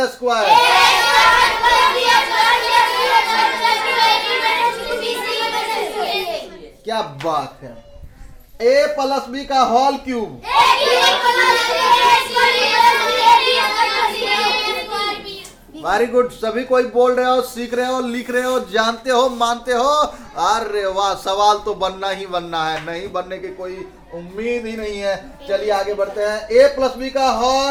स्क्वायर। क्या बात है। A प्लस B का होल क्यूब। Very good. सभी कोई बोल रहे हो, सीख रहे हो, लिख रहे हो, जानते हो, मानते हो। अरे वाह, सवाल तो बनना ही बनना है, नहीं बनने की कोई उम्मीद ही नहीं है। चलिए आगे बढ़ते हैं। A प्लस B का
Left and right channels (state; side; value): identical; both; correlation 1.00